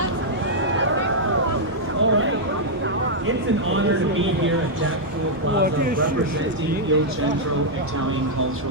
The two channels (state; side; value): normal; both; correlation -0.05